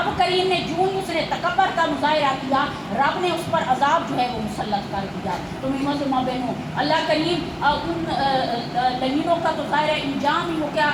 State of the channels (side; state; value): both; identical; correlation 1.00